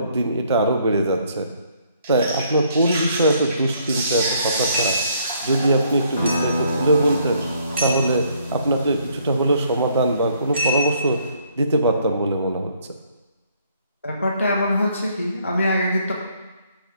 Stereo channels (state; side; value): inverted; both; correlation -0.67